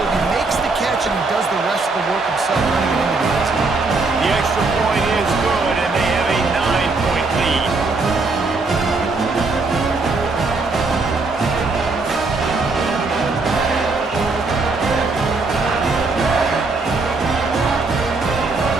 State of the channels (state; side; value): quieter; left; 3.7 dB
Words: He makes the catch, and he does the rest of the work himself, running it into the end zone. The extra point is good, and they have a 9-point lead.